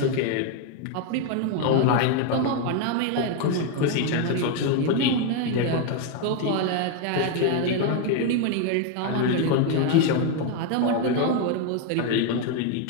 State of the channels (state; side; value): different; both; correlation 0.01